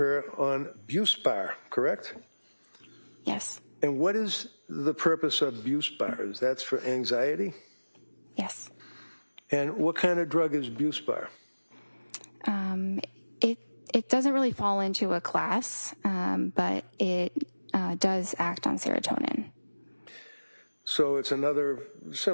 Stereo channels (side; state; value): both; inverted; correlation -1.00